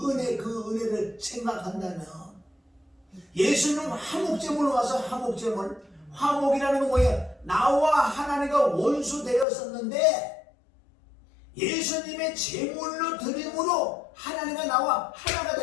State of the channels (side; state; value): right; drops out; at 9.5 s